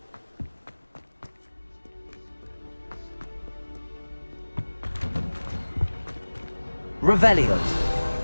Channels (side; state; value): both; inverted; correlation -1.00